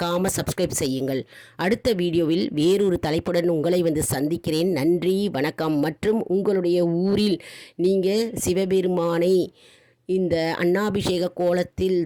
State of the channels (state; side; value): identical; both; correlation 1.00